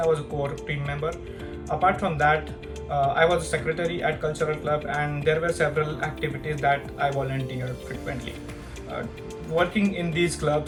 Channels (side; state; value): both; identical; correlation 1.00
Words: was a core team member. Apart from that, I was a secretary at Cultural Club, and there were several activities that I volunteered frequently. Uh, Working in these